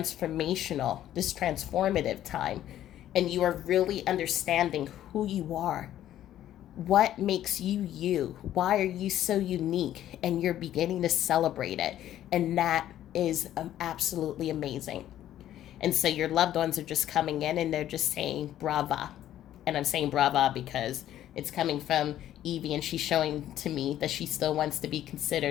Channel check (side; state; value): right; quieter; 12.2 dB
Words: time, and you are really understanding who you are. What makes you you? Why are you so unique? And you're beginning to celebrate it. And that is absolutely amazing. And so your loved ones are just coming in and they're just saying brava. And I'm saying brava because it's coming from Evie, and she's showing to me that she still wants to be